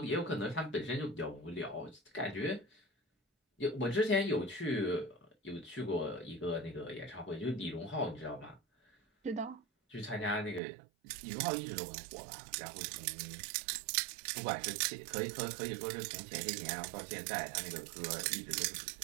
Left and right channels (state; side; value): drops out; left; at 10.6 s